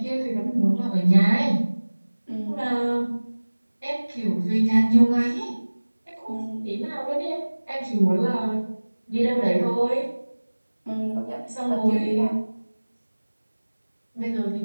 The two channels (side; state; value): both; inverted; correlation -1.00